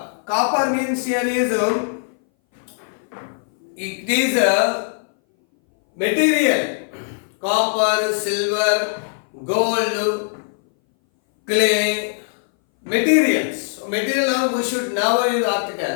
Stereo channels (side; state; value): right; silent; 60 dB below the other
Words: Copper means here is it is a material. Copper, silver, gold, clay, materials. material noun, we should never use